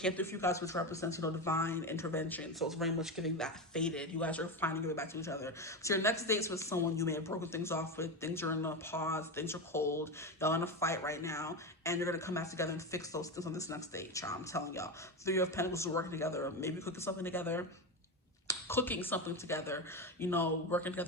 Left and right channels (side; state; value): both; normal; correlation 0.17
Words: through for you guys, which represents, you know, divine intervention. So it's very much giving that faded. You guys are finally giving back to each other. So your next date's with someone you may have broken things off with. Things are in a pause. Things are cold. Y'all in a fight right now. And you're going to come back together and fix those things on this next date, child. I'm telling y'all. 3 of Pentacles are working together. Maybe cooking something together. You know, working